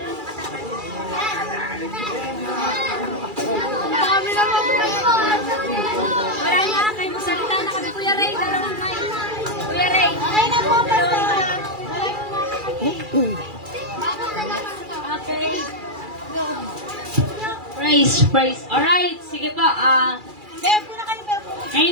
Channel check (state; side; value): late; left; 2.3 ms